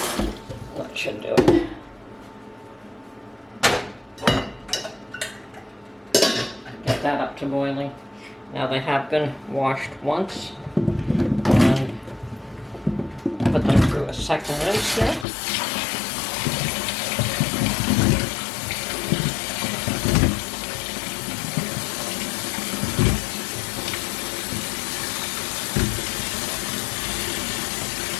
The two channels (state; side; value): drops out; right; at 15.2 s